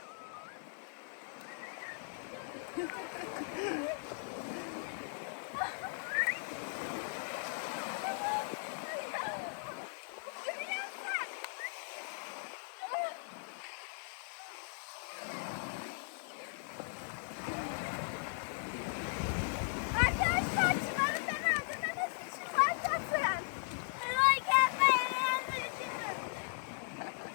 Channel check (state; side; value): silent; right; digital silence